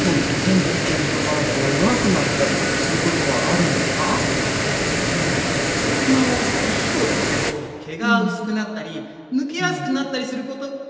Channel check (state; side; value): identical; both; correlation 1.00